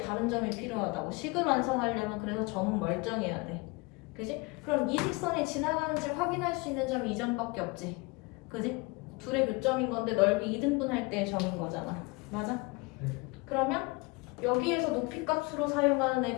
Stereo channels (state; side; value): quieter; right; 26.0 dB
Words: 점이 필요하다고. 식을 완성하려면 그래서 점은 멀쩡해야 돼. 그지? 그럼 이 직선이 지나가는지 확인할 수 있는 점이 이 점밖에 없지. 그지? 둘의 교점인 건데 넓이 2등분할 때의 점인 거잖아. 맞아? 네. 그러면 여기에서 높이 값으로 사용하는